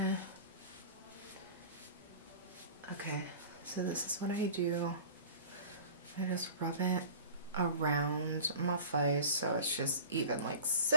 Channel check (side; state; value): both; inverted; correlation -0.42